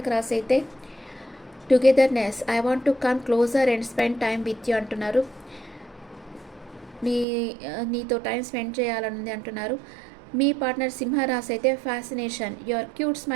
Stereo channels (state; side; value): drops out; left; at 7.2 s